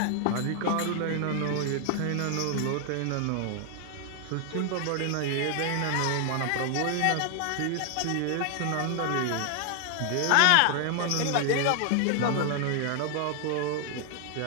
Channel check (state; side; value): different; both; correlation 0.00